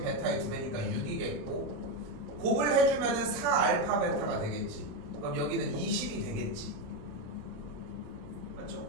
베타의 2배니까 6이겠고 곱을 해주면은 4알파 베타가 되겠지. 그럼 여기는 20이 되겠지. 맞죠?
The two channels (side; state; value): left; late; 27 ms